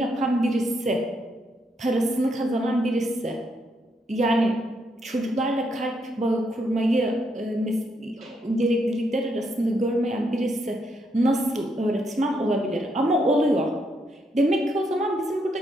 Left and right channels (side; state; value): both; normal; correlation 0.77